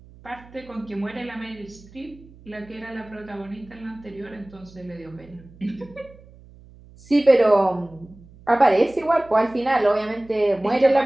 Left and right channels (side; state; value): right; noise; hum, 23 dB below the sound